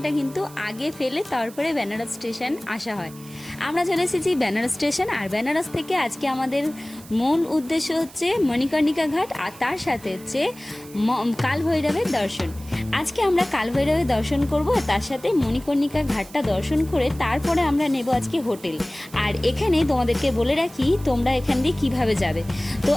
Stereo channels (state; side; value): noise; right; hiss, 20 dB below the sound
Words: কিন্তু আগে ফেলে তারপরে বেনারস স্টেশন আসা হয়। আমরা চলে এসেছি বেনারস স্টেশন, আর বেনারস থেকে আজকে আমাদের মূল উদ্দেশ্য হচ্ছে মণিকর্ণিকা ঘাট, আর তার সাথে হচ্ছে কাল ভৈরবের দর্শন। আজকে আমরা কাল ভৈরবের দর্শন করব, তার সাথে মণিকর্ণিকা ঘাটটা দর্শন করে তারপরে আমরা নেব আজকে হোটেল। আর এখানে তোমাদেরকে বলে রাখি তোমরা এখান দিয়ে কীভাবে যাবে। তো